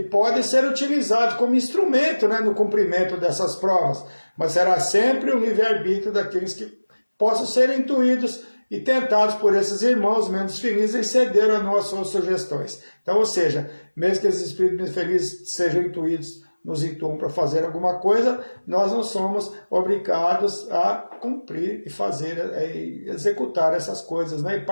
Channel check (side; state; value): both; inverted; correlation -1.00